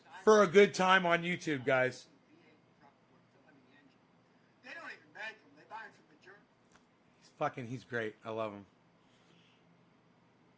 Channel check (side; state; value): both; identical; correlation 1.00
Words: for a good time on YouTube, guys. They don't even make them. They buy them from the German. He's great. I love him.